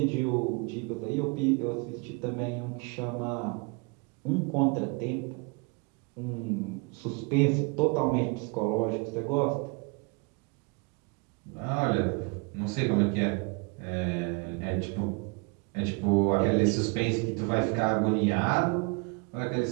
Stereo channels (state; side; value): quieter; left; 31.3 dB